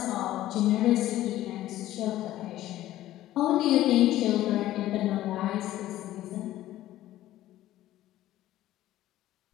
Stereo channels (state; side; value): quieter; right; 14.4 dB